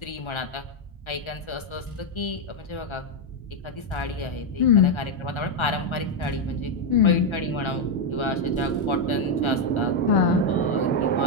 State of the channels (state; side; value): late; right; 1.3 ms